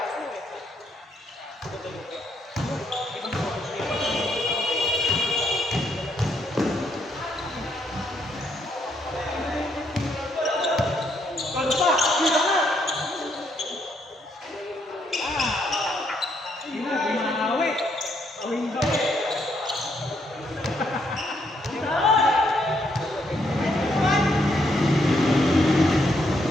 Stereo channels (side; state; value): both; normal; correlation 0.74